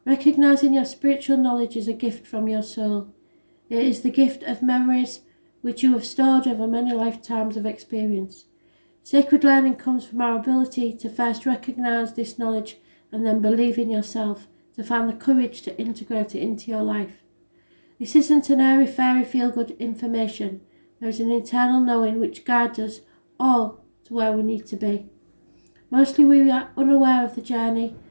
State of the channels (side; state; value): both; inverted; correlation -1.00